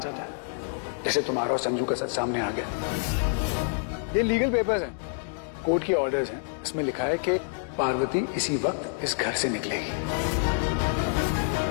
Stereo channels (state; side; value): silent; right; digital silence